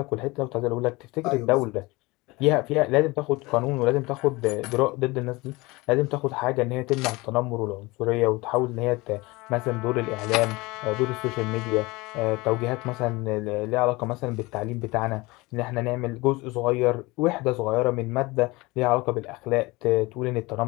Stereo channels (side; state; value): right; quieter; 22.8 dB